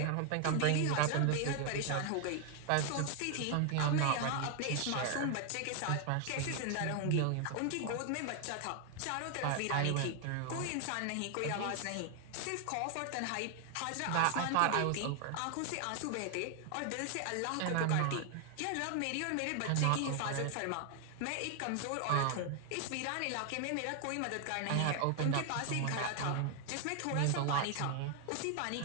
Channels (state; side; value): different; both; correlation 0.00